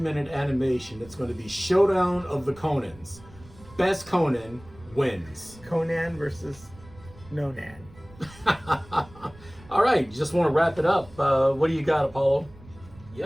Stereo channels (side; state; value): right; noise; rumble, 21 dB below the sound